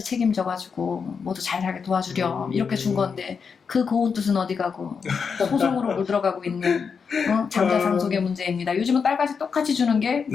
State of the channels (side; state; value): right; quieter; 5.9 dB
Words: 책임져가지고 모두 잘 살게 도와주렴 이렇게 준 건데 그 고운 뜻은 어디 가고 소송으로 물들어가고 있는 장자 상속의 문제입니다. 요즘은 딸까지 똑같이 주는 게